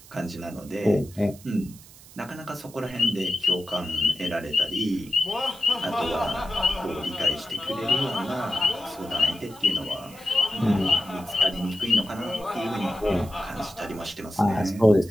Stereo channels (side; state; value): right; noise; hiss, 21 dB below the sound